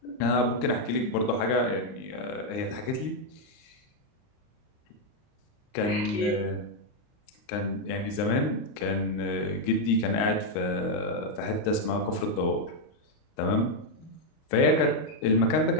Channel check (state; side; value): late; right; 39 ms